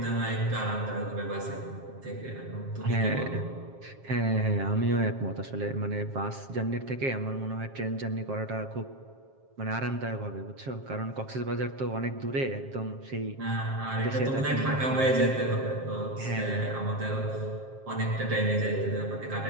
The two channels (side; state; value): left; late; 7.5 ms